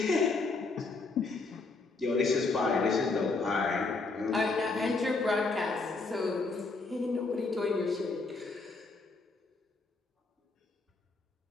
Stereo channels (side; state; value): right; quieter; 3.7 dB